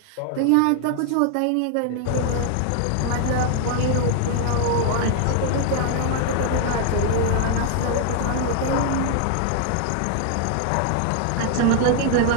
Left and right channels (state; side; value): different; both; correlation 0.00